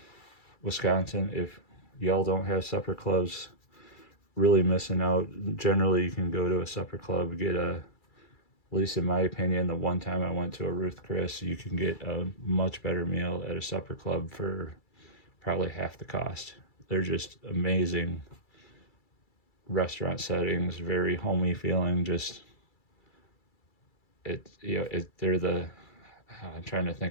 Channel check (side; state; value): right; late; 2.3 ms